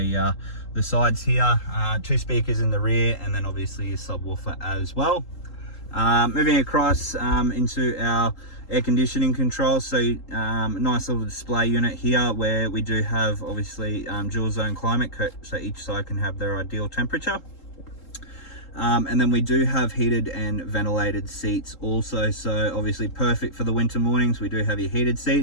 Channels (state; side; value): late; right; 3.8 ms